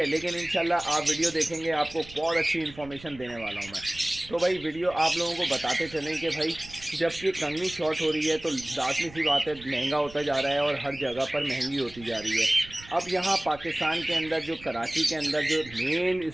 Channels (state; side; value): noise; right; rumble, 19 dB below the sound